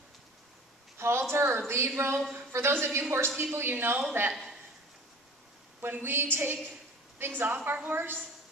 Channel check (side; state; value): both; normal; correlation 0.42